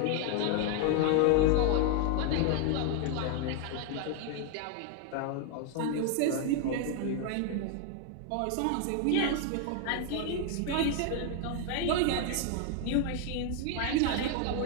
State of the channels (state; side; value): different; both; correlation 0.01